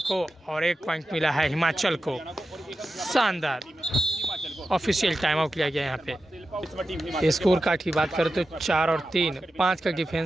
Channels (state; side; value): normal; both; correlation 0.91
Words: को और 1 पॉइंट मिला है हिमाचल को। शानदार ऑफिशियल टाइम आउट लिया गया यहाँ पे। स्कोर कार्ड की बात करें तो 4 और 3, 5 का